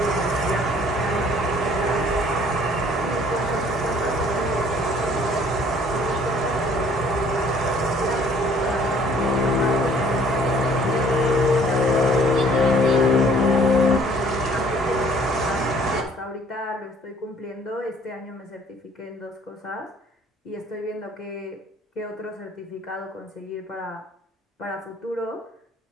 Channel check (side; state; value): both; normal; correlation 0.57